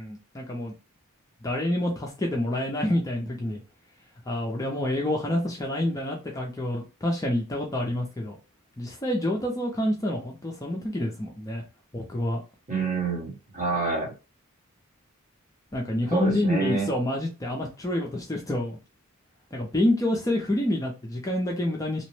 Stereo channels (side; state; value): both; normal; correlation 0.71